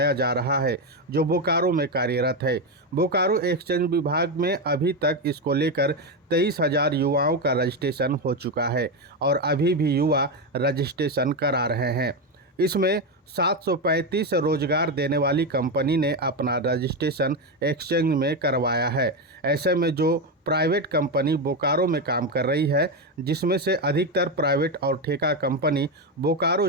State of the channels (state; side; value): normal; both; correlation 0.10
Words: जा रहा है जो बोकारो में कार्यरत है। बोकारो एक्सचेंज विभाग में अभी तक इसको लेकर 23,000 युवाओं का रजिस्ट्रेशन हो चुका है और अभी भी युवा रजिस्ट्रेशन करा रहे हैं। इसमें 735 रोजगार देने वाली कंपनी ने अपना रजिस्ट्रेशन एक्सचेंज में करवाया है। ऐसे में जो प्राइवेट कंपनी बोकारो में काम कर रही है, जिसमें से अधिकतर प्राइवेट और ठेका कंपनी